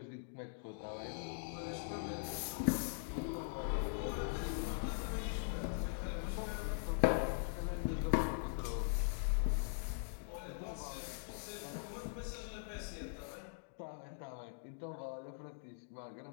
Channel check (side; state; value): right; silent; digital silence